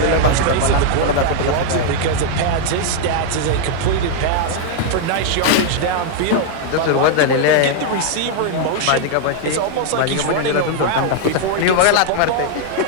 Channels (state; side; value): different; both; correlation 0.00